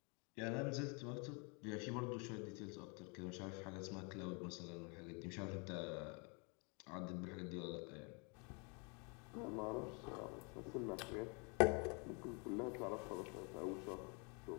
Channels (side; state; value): right; quieter; 33.6 dB